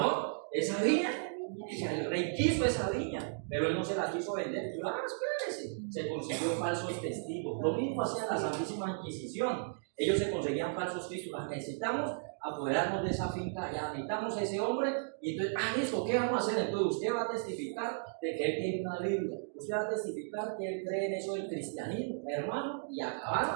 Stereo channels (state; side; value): silent; left; digital silence